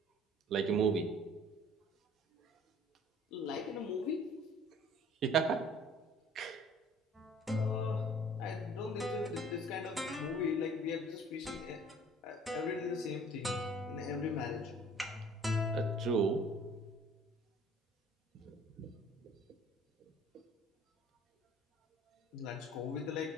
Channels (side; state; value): both; normal; correlation 0.52